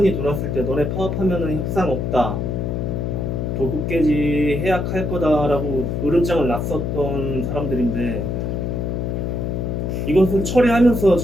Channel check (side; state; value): left; noise; hum, 1 dB below the sound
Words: 돌았을 때 너네 파업하면은 협상 없다. 도급계지 해약할 거다라고 으름장을 놨었던 사람들인데 이것을 처리하면서